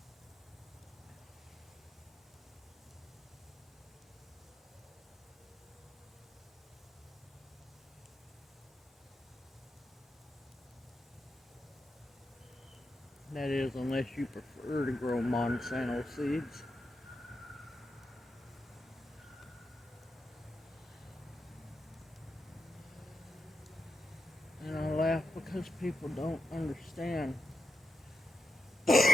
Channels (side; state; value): both; normal; correlation 0.88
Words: That is, unless you prefer to grow Monsanto seeds. And I laugh because people don't understand.